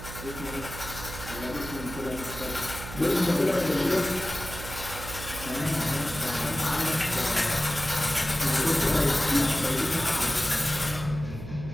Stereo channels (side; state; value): right; noise; hum, 11 dB below the sound